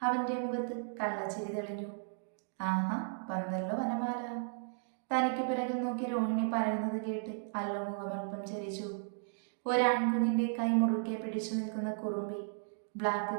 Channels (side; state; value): left; silent; digital silence